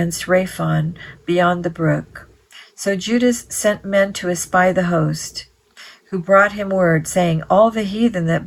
Raphon beyond the brook. So Judas sent men to espy the host, who brought him word, saying, All the heathen that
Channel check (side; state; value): both; identical; correlation 1.00